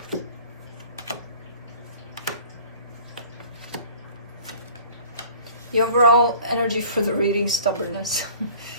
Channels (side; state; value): both; inverted; correlation -0.47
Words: The overall energy for the reading, stubbornness.